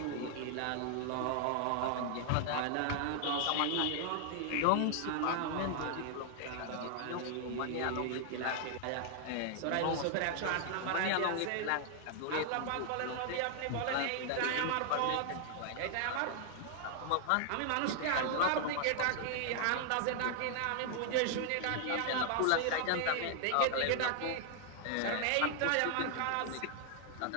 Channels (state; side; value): different; both; correlation 0.00